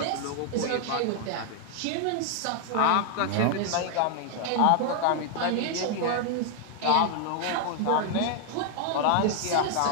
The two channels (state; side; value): different; both; correlation 0.00